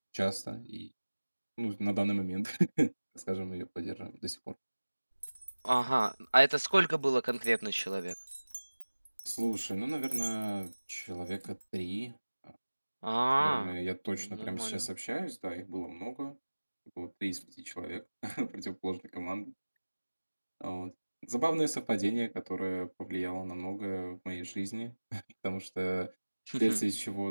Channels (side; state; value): both; inverted; correlation -1.00